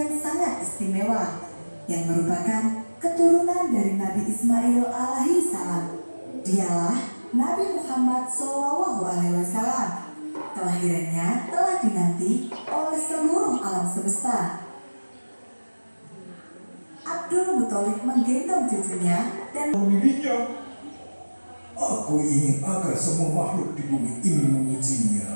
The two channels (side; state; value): both; inverted; correlation -1.00